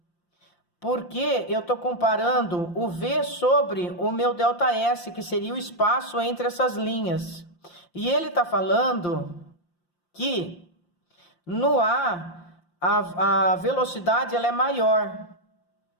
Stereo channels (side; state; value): right; late; 5.7 ms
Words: Porque eu estou comparando o V sobre o meu ΔS, que seria o espaço entre essas linhas. E ele está falando que no A velocidade ela é maior.